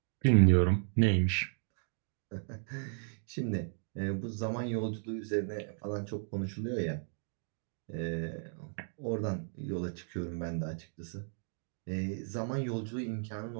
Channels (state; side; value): silent; left; digital silence